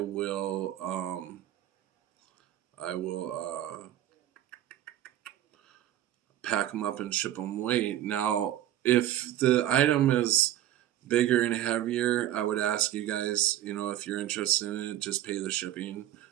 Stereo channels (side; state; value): left; quieter; 12.8 dB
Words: I will pack them up and ship them away. Now, if the item is bigger and heavier, I would ask you guys, if you're interested in it, just pay the shipping.